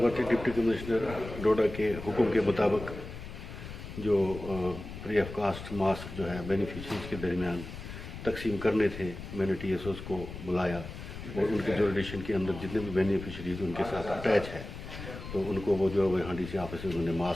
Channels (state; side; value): noise; left; rumble, 11 dB below the sound